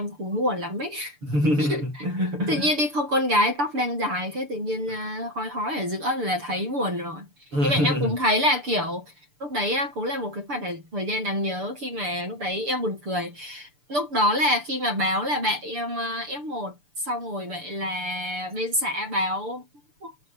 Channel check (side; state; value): left; late; 6.8 ms